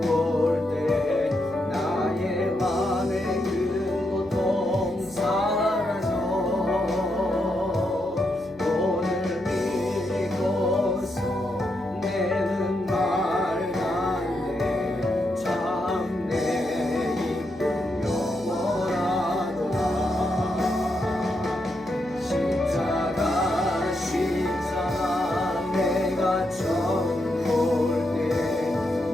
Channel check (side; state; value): right; noise; hum, 23 dB below the sound